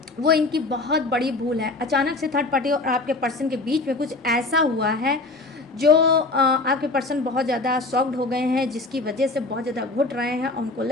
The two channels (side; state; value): right; quieter; 3.3 dB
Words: वो इनकी बहुत बड़ी भूल है। अचानक से थर्ड पार्टी और आपके पर्सन के बीच में कुछ ऐसा हुआ है जो आपके पर्सन बहुत ज़्यादा शॉक्ड हो गए हैं, जिसकी वजह से बहुत ज़्यादा घुट रहे हैं और उनको